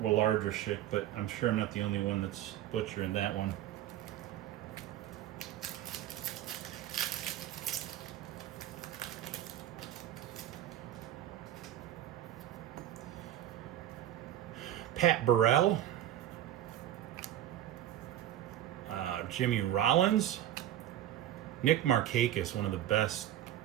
but I'm sure I'm not the only one that's butchering that one. Pat Burrell. Jimmy Rollins. Nick Markakis, one of the best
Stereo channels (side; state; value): left; quieter; 12.4 dB